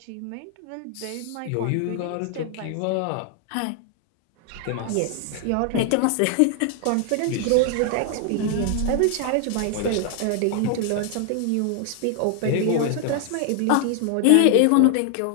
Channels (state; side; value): different; both; correlation 0.00